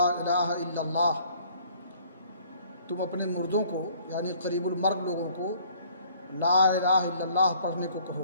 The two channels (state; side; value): inverted; both; correlation -0.58